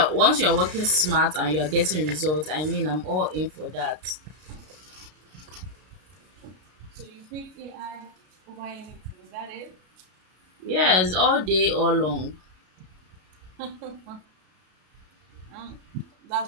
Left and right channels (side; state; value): left; late; 33 ms